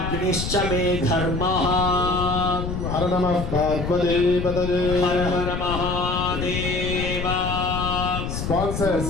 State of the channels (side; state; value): left; noise; rumble, 4 dB below the sound